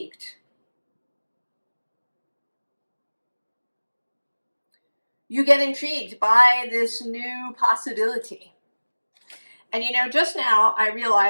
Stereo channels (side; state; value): both; inverted; correlation -1.00